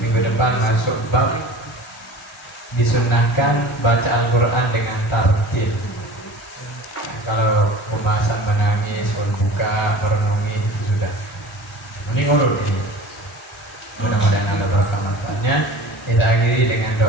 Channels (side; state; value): both; normal; correlation 0.39